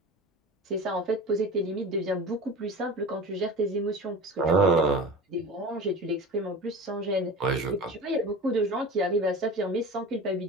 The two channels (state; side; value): normal; both; correlation 0.34